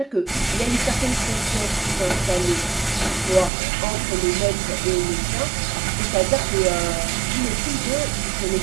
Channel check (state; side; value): drops out; left; at 3.5 s